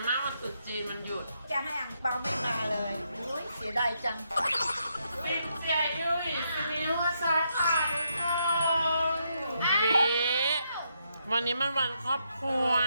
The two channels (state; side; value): inverted; both; correlation -0.79